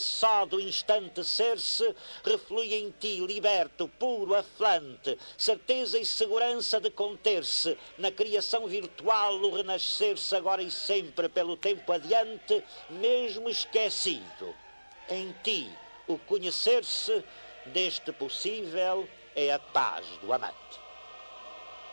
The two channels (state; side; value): inverted; both; correlation -1.00